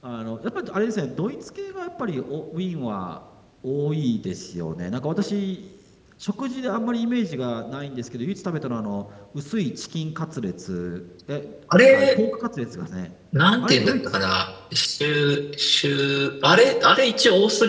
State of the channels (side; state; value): both; identical; correlation 1.00